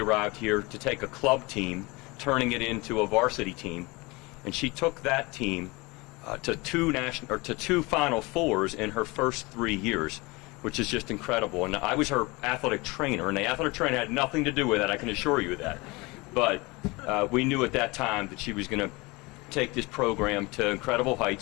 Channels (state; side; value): quieter; right; 24.5 dB